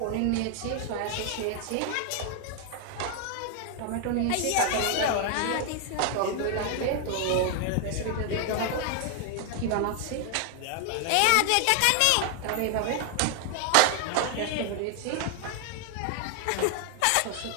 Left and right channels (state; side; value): different; both; correlation 0.00